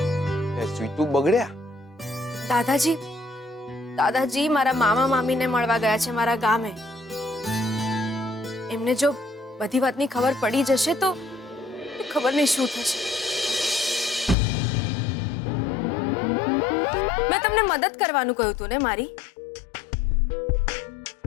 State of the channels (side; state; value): right; drops out; at 14.4 s